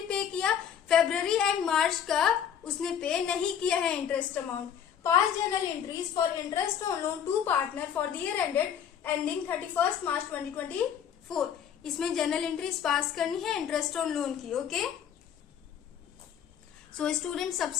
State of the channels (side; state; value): right; quieter; 8.6 dB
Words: पे किया। फरवरी एंड मार्च का उसने पे नहीं किया है interest amount. Pass journal entries for interest on loan to partner for the year ended ending 31 March 2024। इसमें जर्नल एंट्रीज पास करनी है इंटरेस्ट ऑन लोन की। ओके, सो स्टूडेंट,